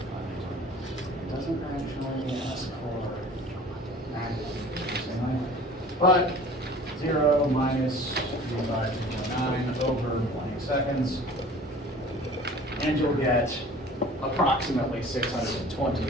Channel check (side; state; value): both; normal; correlation 0.45